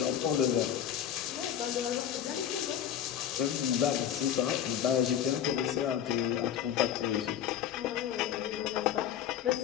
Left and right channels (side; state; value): right; quieter; 9.7 dB